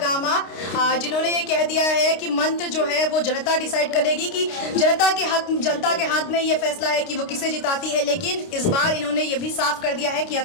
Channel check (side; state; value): right; late; 29 ms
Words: जिन्होंने ये कह दिया है कि मंत्र जो है वो जनता डिसाइड करेगी, कि जनता के हाथ में ये फैसला है कि वो किसे जिताती है। लेकिन इस बार इन्होंने ये भी साफ कर दिया है कि